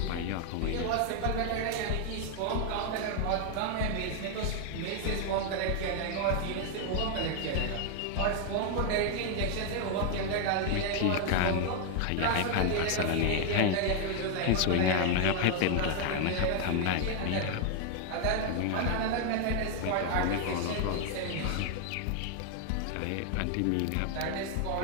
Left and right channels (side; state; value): both; different; correlation 0.01